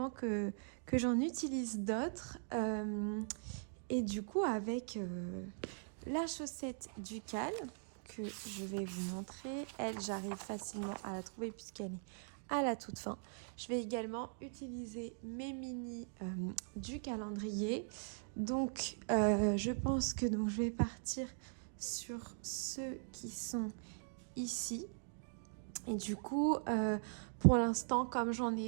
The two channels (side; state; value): left; silent; digital silence